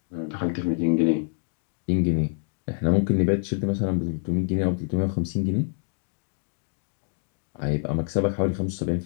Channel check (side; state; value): right; silent; digital silence